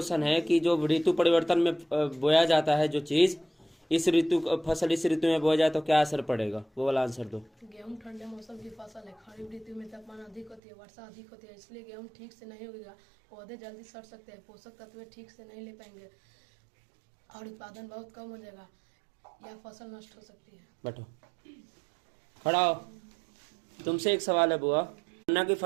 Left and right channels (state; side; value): drops out; left; at 10.6 s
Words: है कि जो ऋतु परिवर्तन में बोया जाता है जो चीज, फसल इस ऋतु में बोया जाए तो क्या असर पड़ेगा? वो वाला आंसर दो। गेहूं ठंडे मौसम की फसल है। खरीफ ऋतु में तापमान अधिक होती है, वर्षा अधिक होती है, इसलिए गेहूं ठीक से नहीं उगेगा। पौधे जल्दी सड़ सकते हैं, पोषक तत्व ठीक से नहीं ले पाएंगे और उत्पादन बहुत कम हो जाएगा। यह फसल नष्ट हो सकती है। बैठो, खड़ा हो। तुमसे एक सवाल है बुआ, गन्ना की